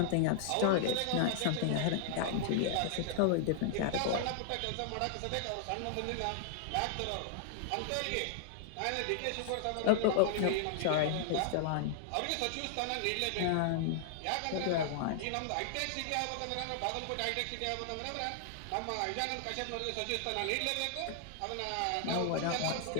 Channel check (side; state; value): both; different; correlation -0.01